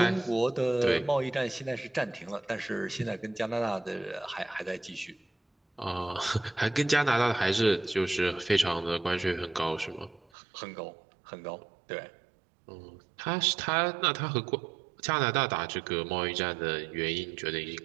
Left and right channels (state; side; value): drops out; left; at 10.2 s